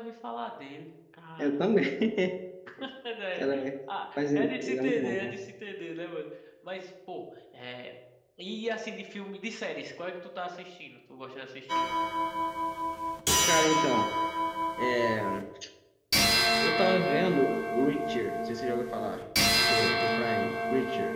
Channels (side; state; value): both; identical; correlation 1.00